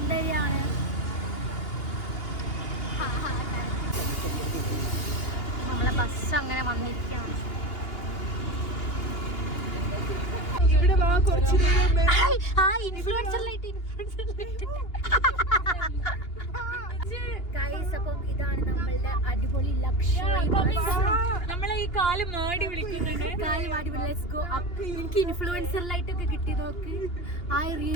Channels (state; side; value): late; right; 2.8 ms